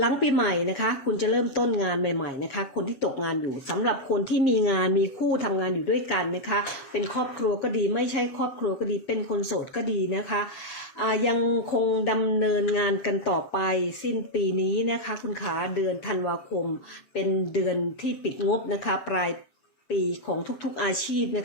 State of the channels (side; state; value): right; late; 7.2 ms